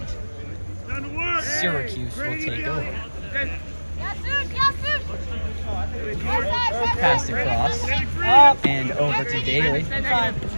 Syracuse will take over. Passed across and over to Daly.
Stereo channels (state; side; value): inverted; both; correlation -1.00